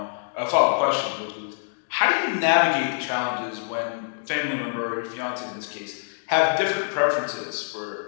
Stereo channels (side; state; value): right; silent; 62 dB below the other